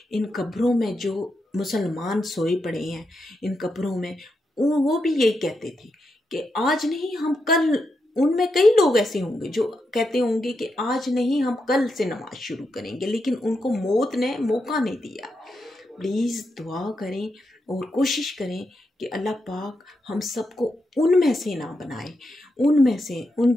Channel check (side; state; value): both; normal; correlation 0.84